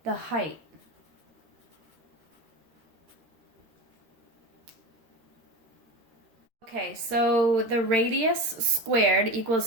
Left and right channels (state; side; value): late; left; 13 ms